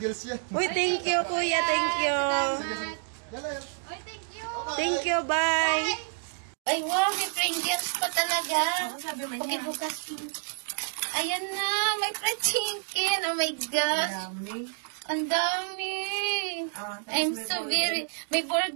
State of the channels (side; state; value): left; silent; digital silence